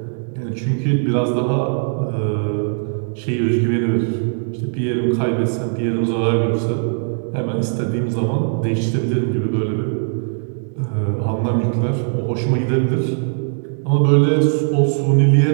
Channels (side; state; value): left; silent; digital silence